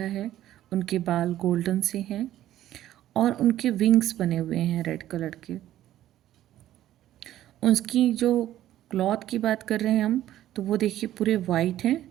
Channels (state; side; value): quieter; left; 13.1 dB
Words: है। उनके बाल गोल्डन से हैं और उनके विंग्स बने हुए हैं रेड कलर के। उसकी जो क्लॉथ की बात कर रहे हैं हम, तो वो देखिए पूरे वाइट हैं